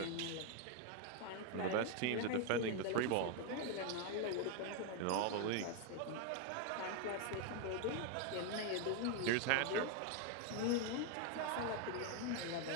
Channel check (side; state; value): both; different; correlation 0.01